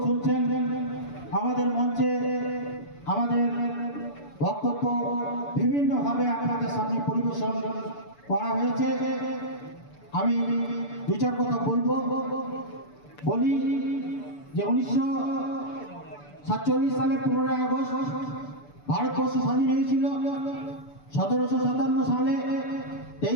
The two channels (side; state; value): right; late; 6.9 ms